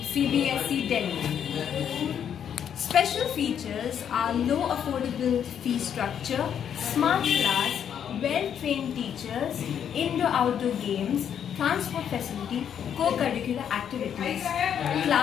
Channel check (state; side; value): quieter; right; 8.7 dB